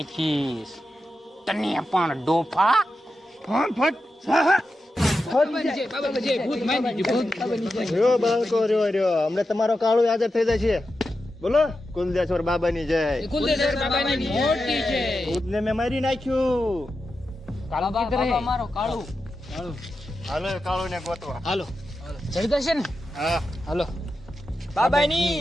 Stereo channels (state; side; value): normal; both; correlation 0.90